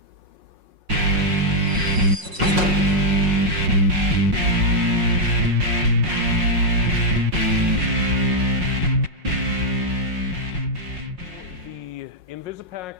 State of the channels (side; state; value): left; late; 5.5 ms